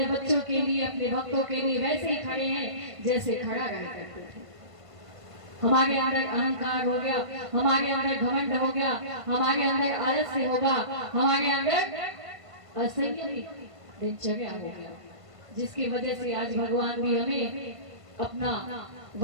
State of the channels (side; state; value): left; late; 1.5 ms